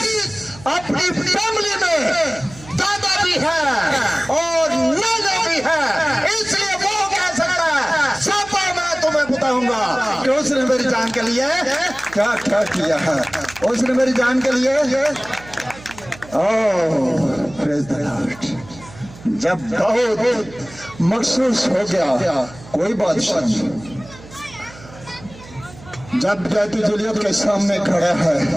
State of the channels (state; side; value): noise; right; hum, 19 dB below the sound